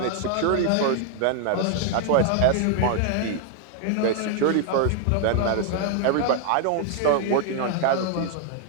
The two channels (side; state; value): both; different; correlation 0.00